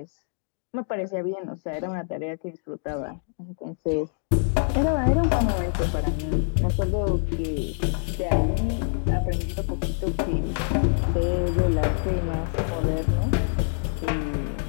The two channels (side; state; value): right; silent; digital silence